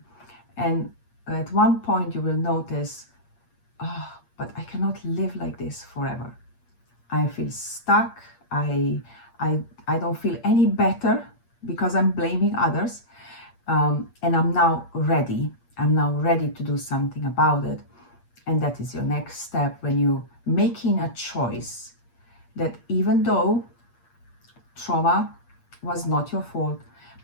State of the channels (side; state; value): right; late; 8.5 ms